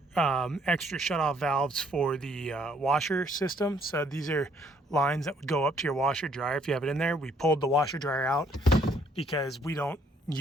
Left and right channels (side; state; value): both; normal; correlation 0.66